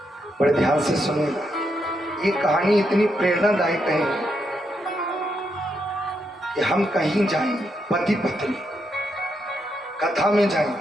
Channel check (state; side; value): normal; both; correlation 0.80